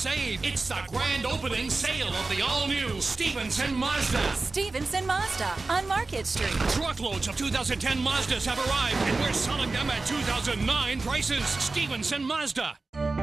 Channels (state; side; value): quieter; left; 3.6 dB